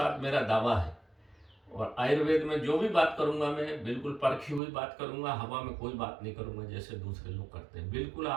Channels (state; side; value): drops out; left; at 4.6 s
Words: मेरा दावा है। और आयुर्वेद में जो भी बात करूंगा मैं बिल्कुल परखी हुई बात करूंगा, हवा में कोई बात नहीं करूंगा जैसे दूसरे लोग करते हैं। बिल्कुल